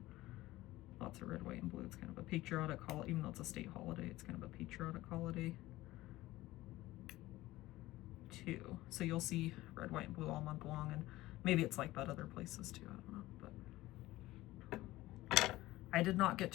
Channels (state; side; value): quieter; right; 17.5 dB